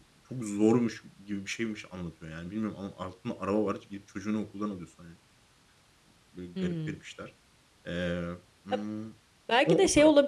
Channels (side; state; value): both; identical; correlation 1.00